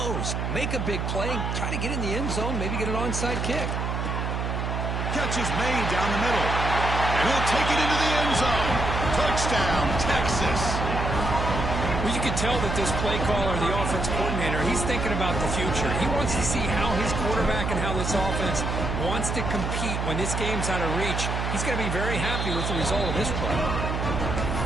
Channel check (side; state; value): right; noise; hum, 1 dB below the sound